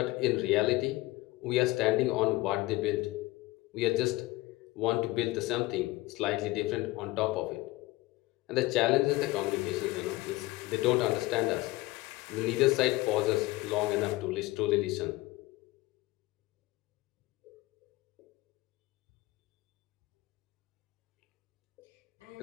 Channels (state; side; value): quieter; right; 19.7 dB